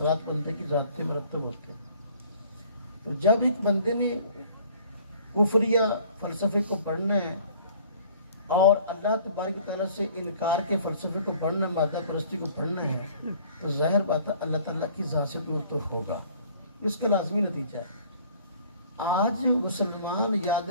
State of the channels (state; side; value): inverted; both; correlation -0.53